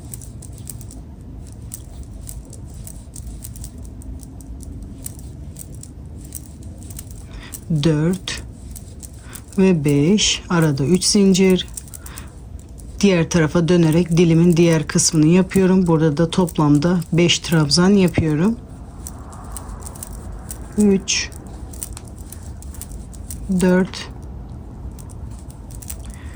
Dört ve 5. Arada 3 zincir. Diğer tarafa dönerek dilimin diğer kısmını yapıyorum. Burada da toplamda 5 trabzan yapıyorum. 3, 4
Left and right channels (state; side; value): identical; both; correlation 1.00